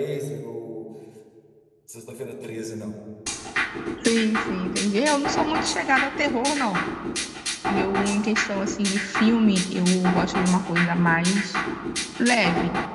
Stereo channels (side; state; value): both; identical; correlation 1.00